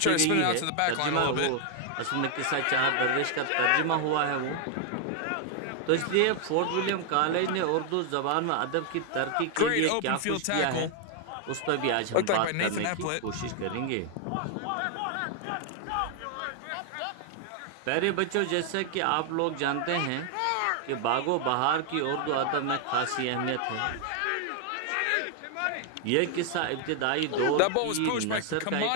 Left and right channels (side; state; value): both; different; correlation 0.00